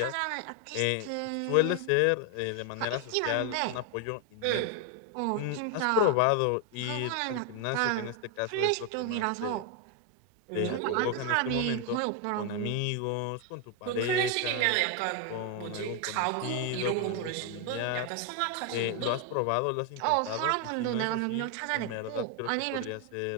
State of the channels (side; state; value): both; different; correlation 0.01